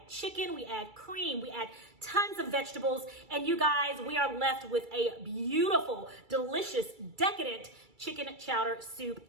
chicken, we add cream, we add tons of vegetables, and you guys, we are left with a beautiful, delicious, decadent chicken chowder soup,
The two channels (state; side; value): late; left; 2.3 ms